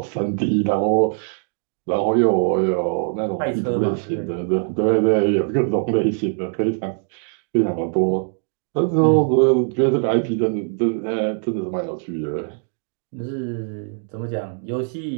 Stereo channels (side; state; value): left; silent; 59 dB below the other